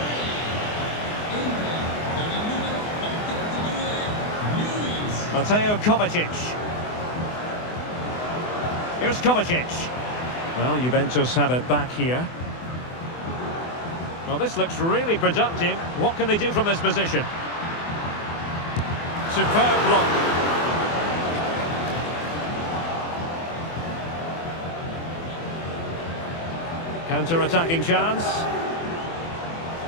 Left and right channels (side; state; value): right; late; 24 ms